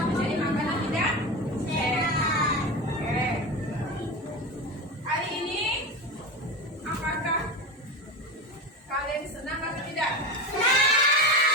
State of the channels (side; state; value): both; normal; correlation 0.23